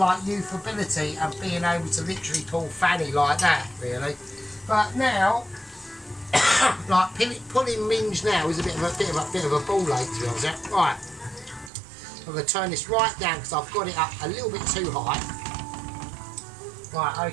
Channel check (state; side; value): drops out; left; at 11.7 s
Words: youthability and being able to literally pull fanny like that, really. But now, like pulling minge now is a bit of a ball ache, to be honest. Right, I'm going to turn this right down because I've got it up a little bit too high. Right,